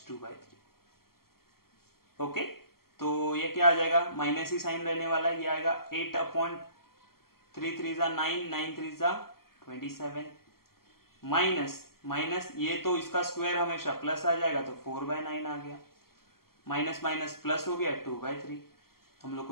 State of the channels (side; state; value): right; late; 0.93 ms